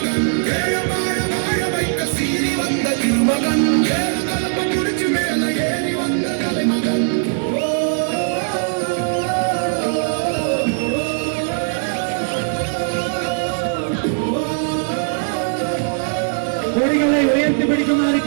வாழ வைக்க சீறி வந்த திருமகன் கலப்ப குடிச்சு மேல ஏறி வந்த தலைமகன் கொடிகளை உயர்த்தி பிடிக்குமாறு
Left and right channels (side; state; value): left; silent; 66 dB below the other